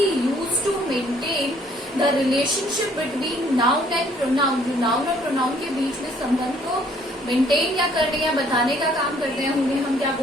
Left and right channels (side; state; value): both; normal; correlation 0.62